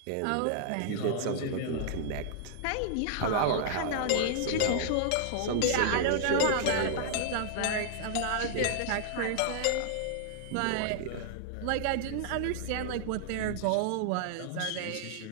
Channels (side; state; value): both; different; correlation -0.01